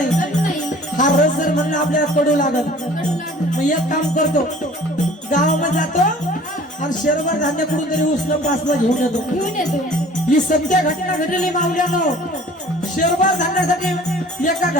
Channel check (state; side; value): normal; both; correlation 0.49